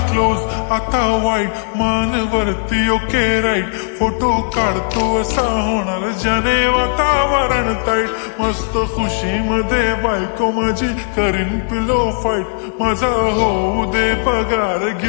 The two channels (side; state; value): right; silent; digital silence